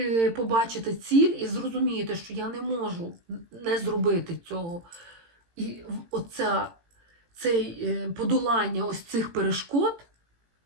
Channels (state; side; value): late; left; 18 ms